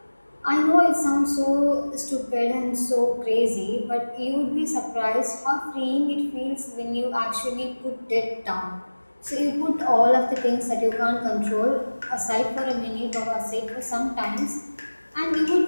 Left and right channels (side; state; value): both; inverted; correlation -1.00